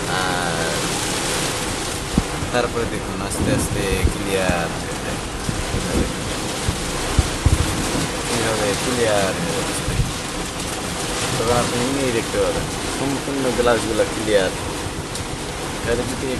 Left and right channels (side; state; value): both; identical; correlation 1.00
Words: আর তারপরে দেখুন আস্তে আস্তে ক্লিয়ার হয়ে যায়, এইভাবে ক্লিয়ার হয়ে যাচ্ছে। তখন আপনি নিয়েই দেখতে পাবেন সম্পূর্ণ গ্লাসগুলো ক্লিয়ার। তাহলে যদি